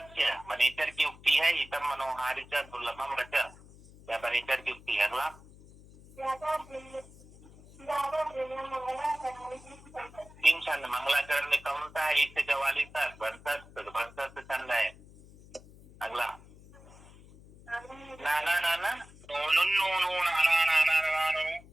वनेचर की उक्ति है, इतम मनोहारी च दुर्लभम रच, या वनेचर की उक्ति है। अगला तीन छंद मंगलाचरण में कौन सा है, 1 से 44 तक वंशस्थ छंद है। अगला नाना नाना नो नो नो नाना नाना नानो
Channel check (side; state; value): left; noise; hum, 22 dB below the sound